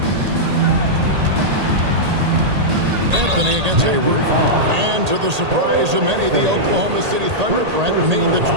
Anthony against Hayward. And to the surprise of many, the Oklahoma City Thunder, Brent, made the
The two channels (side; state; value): left; late; 1.8 ms